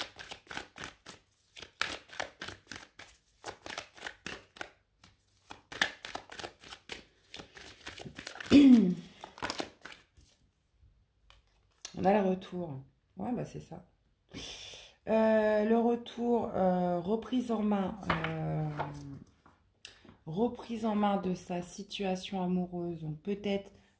On a le retour. Ouais, bah c'est ça. Le retour, reprise en main de sa situation amoureuse. Donc peut-être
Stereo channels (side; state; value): both; identical; correlation 1.00